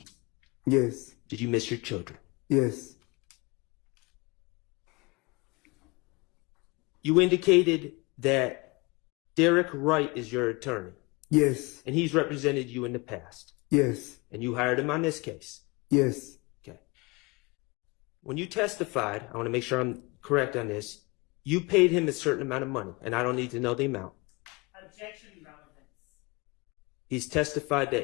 Yes. Did you miss your children? Yes. You indicated that Derek Wright is your attorney, Yes. and he's represented you in the past, Yes. and you hired him on this case. Yes. Okay. When you testified, I want to make sure I'm correct on this, you paid him a certain amount of money, and I don't need to know the amount. Objection, relevance. He's testified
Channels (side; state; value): right; quieter; 26.4 dB